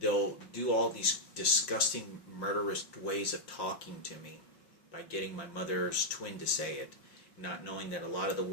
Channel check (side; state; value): right; late; 5.7 ms